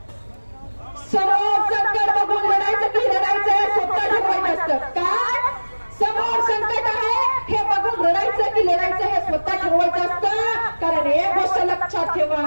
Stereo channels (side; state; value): both; inverted; correlation -1.00